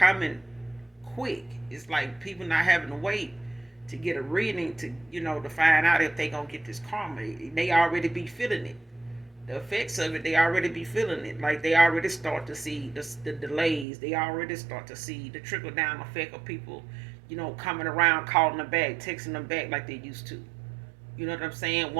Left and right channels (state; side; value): drops out; left; at 13.9 s